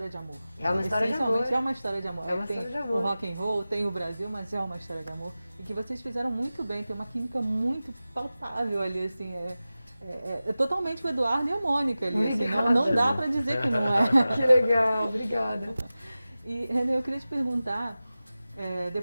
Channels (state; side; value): inverted; both; correlation -0.96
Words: de amor. É uma história de amor. Essencialmente é uma história de amor. É uma tem história de amor. O rock and roll, tem o Brasil, mas é uma história de amor. E que vocês fizeram muito bem. Tem uma química muito palpável ali, assim. É totalmente o Eduardo e a Mônica ali, assim, não dá pra dizer que não é. Que legal, obrigada. E, René, eu queria te perguntar,